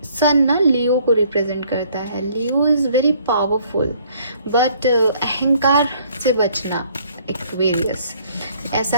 सन ना लियो को रिप्रेजेंट करता है। लियो इज़ वेरी पावरफुल, बट अहंकार से बचना एक्वेरियस।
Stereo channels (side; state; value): both; inverted; correlation -0.61